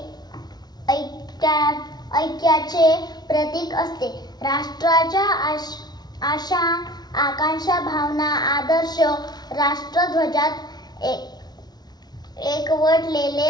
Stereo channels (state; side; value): late; right; 0.19 ms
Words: ऐक्याचे प्रतीक असते. राष्ट्राच्या आशा, आकांक्षा, भावना, आदर्श राष्ट्रध्वजात एकवटलेले